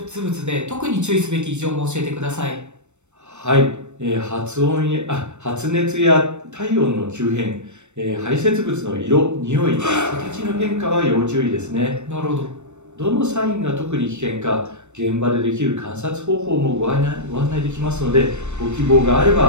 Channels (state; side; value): late; left; 0.83 ms